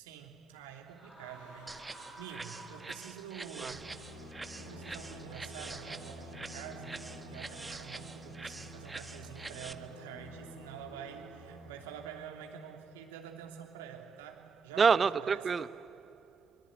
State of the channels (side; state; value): left; quieter; 5.3 dB